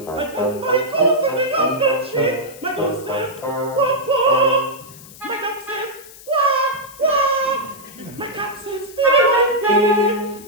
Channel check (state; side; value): noise; left; hiss, 19 dB below the sound